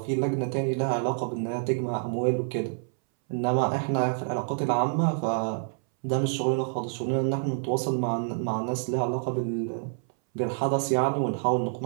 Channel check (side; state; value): left; silent; 60 dB below the other